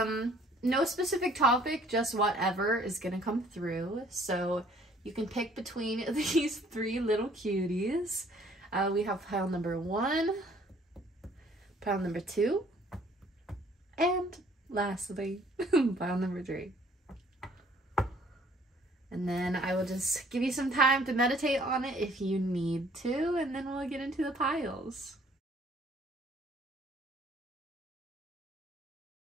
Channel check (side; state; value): both; normal; correlation 0.59